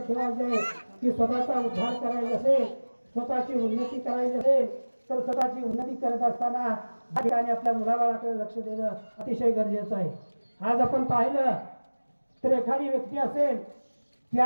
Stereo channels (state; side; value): inverted; both; correlation -1.00